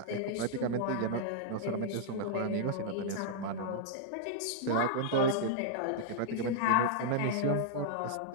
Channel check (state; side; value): different; both; correlation -0.01